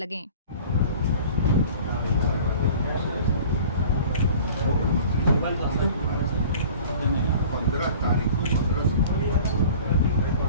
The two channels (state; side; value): inverted; both; correlation -0.45